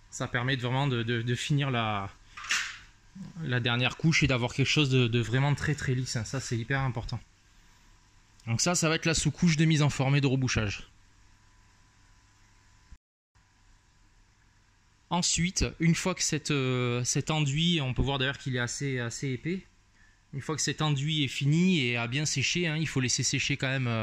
Ça permet vraiment de finir la dernière couche et d'avoir quelque chose de vraiment très très lisse, hein. Ça c'est hyper important. Donc ça va être la sous-couche de mise en forme et de rebouchage. Ensuite, une fois que cet enduit, on peut voir d'ailleurs qu'il est assez épais, une fois que cet enduit est fini et a bien séché, hein, il faut laisser sécher quand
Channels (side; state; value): both; identical; correlation 1.00